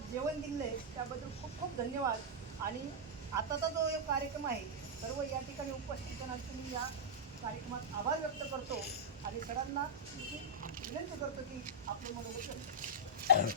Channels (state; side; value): normal; both; correlation -0.08